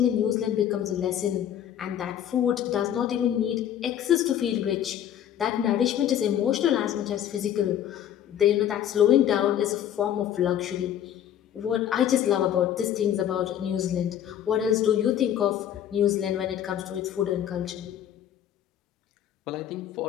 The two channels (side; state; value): right; quieter; 10.4 dB